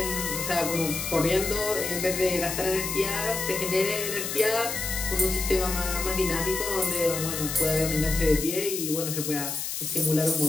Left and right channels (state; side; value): noise; left; hiss, 4 dB below the sound